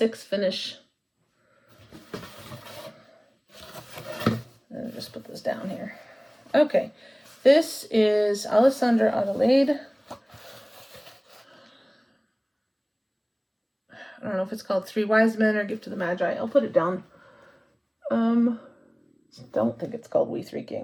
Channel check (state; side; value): identical; both; correlation 1.00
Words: finish. I'll just put this down here. Okay, this is Alessandra Adelaide. I don't know if it's called 3 Wise Men or Gift to the Magi. I'll put it down. Don't think it's called We Three